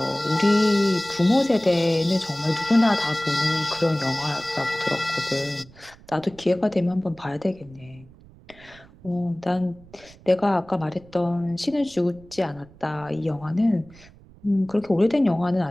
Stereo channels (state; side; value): noise; right; rumble, 24 dB below the sound